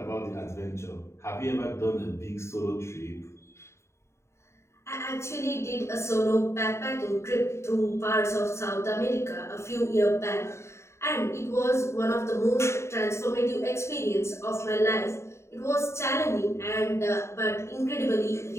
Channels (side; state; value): right; late; 0.13 ms